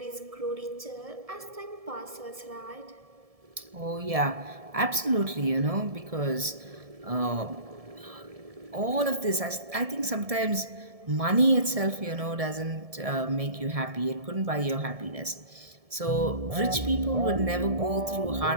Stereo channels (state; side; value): late; left; 1.7 ms